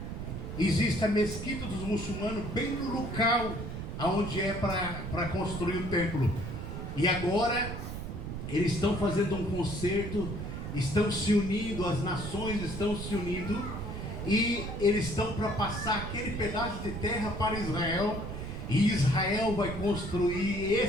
Existe a mesquita dos muçulmanos bem no local onde é para construir o templo. E agora eles estão fazendo um concerto, estão se unindo, as nações estão se unindo, e eles estão para passar aquele pedaço de terra para Israel. E Israel vai construir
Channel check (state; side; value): noise; right; rumble, 6 dB below the sound